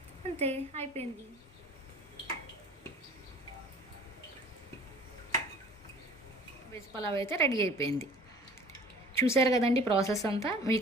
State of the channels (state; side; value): normal; both; correlation 0.47